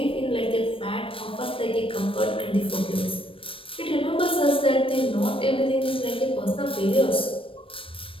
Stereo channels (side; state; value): right; late; 0.26 ms